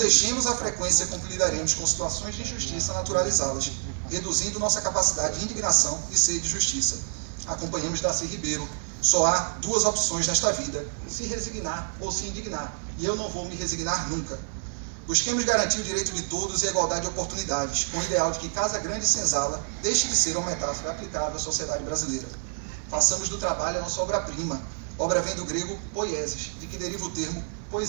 a frequência com que lidaremos com situações de injustiça naturalizadas, reduzindo nossa capacidade de indignação e sede de justiça. Acompanhamos Darcy Ribeiro. Só há duas opções nesta vida, se resignar ou se indignar, e eu não vou me resignar nunca. Busquemos garantir o direito de todos e a igualdade de oportunidades, com o ideal de que Casa Grande e Senzala deixe de ser uma metáfora aplicável à sociedade brasileira. Façamos do trabalho a nossa obra-prima. Obra vem do grego poiesis, de que deriva o termo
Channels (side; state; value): left; silent; 60 dB below the other